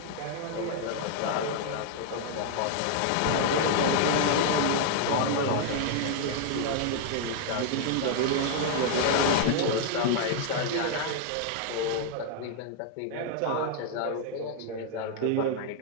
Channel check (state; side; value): different; both; correlation 0.00